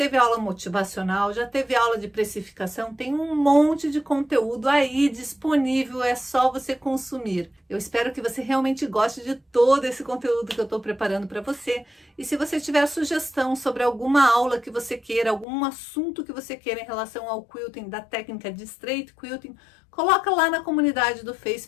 aula motivacional, já teve aula de precificação, tem um monte de conteúdo aí disponível, é só você consumir. Eu espero que você realmente goste de todo esse conteúdo que eu estou preparando para você. E se você tiver sugestão sobre alguma aula que você queira, algum assunto que você queira em relação ao quilting, da técnica de straight quilting, coloca lá na comunidade do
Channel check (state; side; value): drops out; right; at 15.5 s